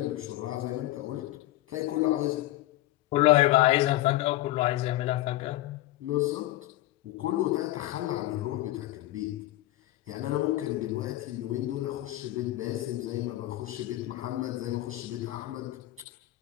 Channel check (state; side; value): quieter; right; 16.1 dB